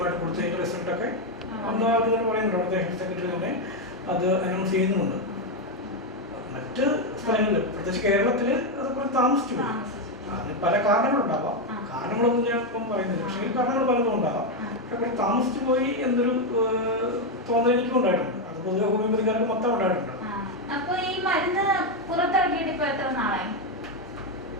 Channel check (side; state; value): both; normal; correlation 0.05